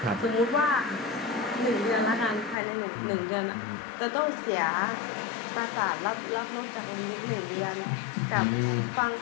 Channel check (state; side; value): drops out; right; at 2.6 s